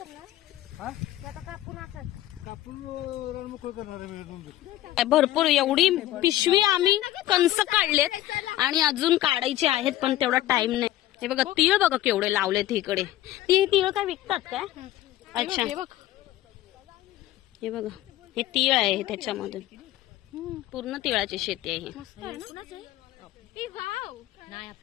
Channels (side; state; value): right; quieter; 14.6 dB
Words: भरपूर एवढी पिशवी आम्ही कंस काढलेत आणि अजून काढायचे आहेत, पण तेवढा टाइम नाही. हे बघा तीळ बघा केवढे लावलेत इकडे. ती तीळ काय विकतात काय? अच्छा हे बघा हे तीळ आहे त्याच्यामधून पूर्ण तिळाची शेती आहे.